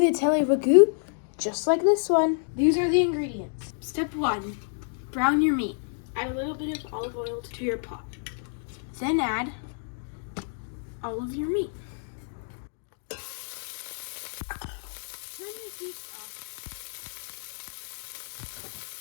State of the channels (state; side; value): silent; right; digital silence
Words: ragu, just like this one. These are the ingredients. Step 1, brown your meat. Add a little bit of olive oil to your pot. Then add all of your meat. Turn the heat off.